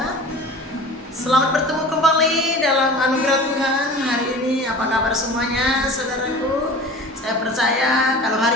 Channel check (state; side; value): normal; both; correlation 0.39